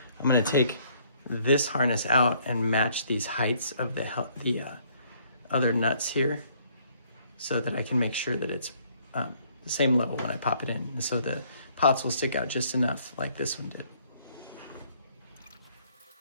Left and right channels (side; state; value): both; inverted; correlation -0.64